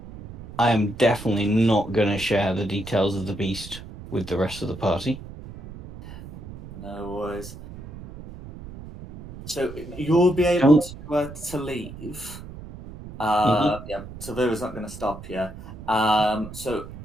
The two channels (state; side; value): noise; right; rumble, 14 dB below the sound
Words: I am definitely not going to share the details of the beast with the rest of the party. No worries. So you'll be able to leave. Yeah, Tavira's not going to stop you. So